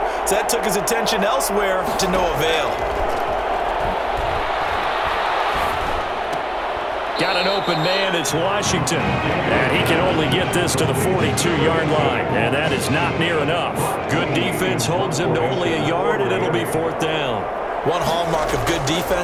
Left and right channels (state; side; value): identical; both; correlation 1.00